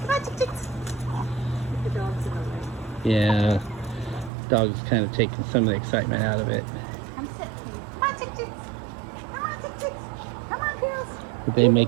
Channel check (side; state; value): left; drops out; at 4.3 s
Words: Come on, chicks. The dogs in the way. Yeah. Dog's kind of taking some of the excitement out of it. Come sit. Come on, chicks. Come on, chicks. Come on, girls. They